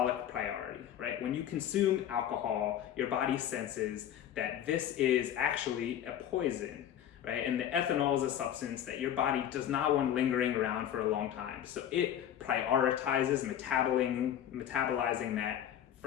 priority, right? When you consume alcohol, your body senses that this is actually a poison. Right? And the ethanol is a substance that your body does not want lingering around for a long time. So it prioritizes metabolizing that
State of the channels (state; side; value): quieter; right; 10.4 dB